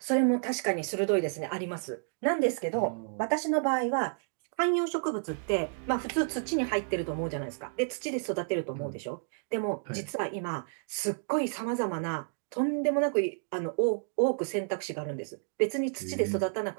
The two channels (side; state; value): left; silent; digital silence